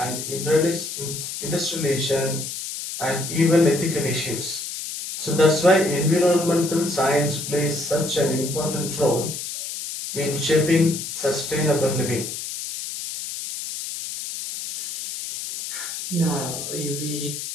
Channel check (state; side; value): noise; left; hiss, 7 dB below the sound